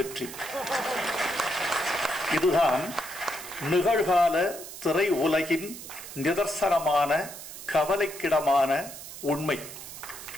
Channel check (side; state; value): right; noise; hiss, 12 dB below the sound